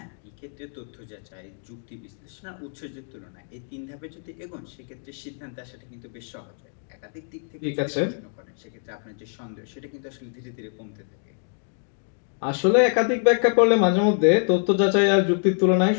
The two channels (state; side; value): silent; right; 61 dB below the other